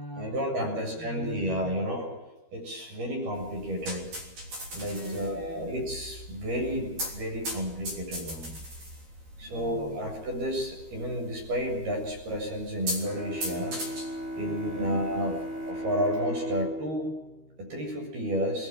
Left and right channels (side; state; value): left; late; 13 ms